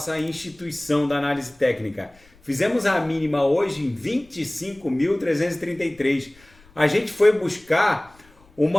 instituição da análise técnica. Fizemos a mínima hoje em 25.333. A gente foi buscar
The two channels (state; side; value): noise; left; rumble, 29 dB below the sound